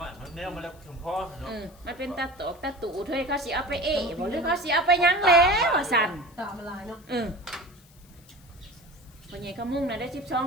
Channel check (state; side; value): noise; left; hiss, 27 dB below the sound